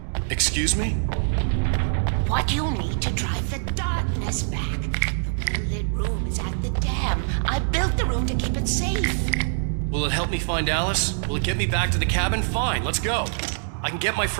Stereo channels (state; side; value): silent; left; digital silence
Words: Excuse me? What you need to drive the darkness back. The well-lit room is at the dam. I built the room to keep it safe. Will it help me find Alice? Will it get me back to the cabin? Fine, let's go. I can get my